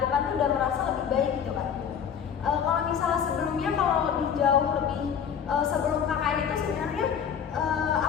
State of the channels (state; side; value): quieter; right; 7.8 dB